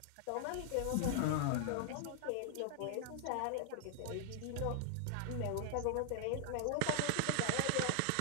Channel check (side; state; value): both; different; correlation -0.01